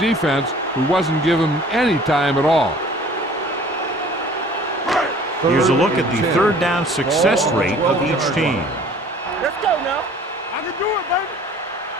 who wasn't given any time at all. Here's a look at the third down success rate of each team. Let's go now. I can do it, baby.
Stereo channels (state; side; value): normal; both; correlation 0.50